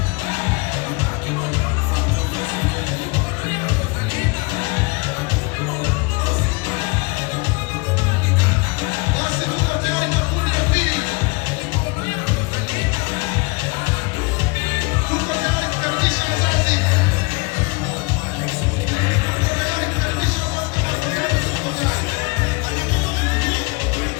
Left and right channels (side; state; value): right; quieter; 28.6 dB